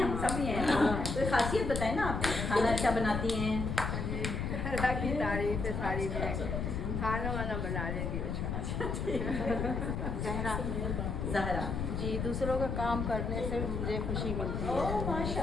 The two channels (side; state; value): left; noise; rumble, 2 dB below the sound